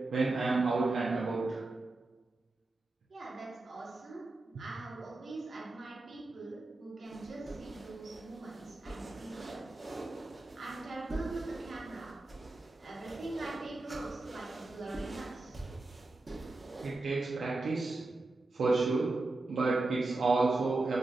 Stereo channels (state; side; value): quieter; left; 3.1 dB